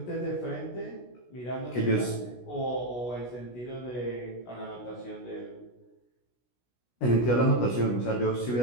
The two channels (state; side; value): late; right; 16 ms